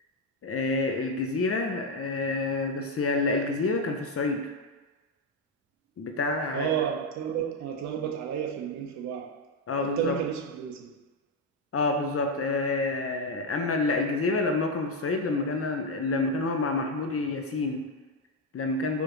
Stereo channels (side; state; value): both; normal; correlation 0.05